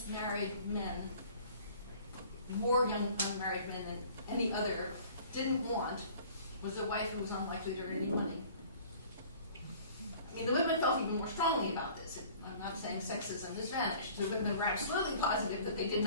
men, more young unmarried men than any other, didn't want was a wife who was unlikely to earn any money. I mean, the women felt even more strongly about this. I'm not saying sexism has vanished. The women were absolutely positive that they did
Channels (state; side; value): inverted; both; correlation -0.49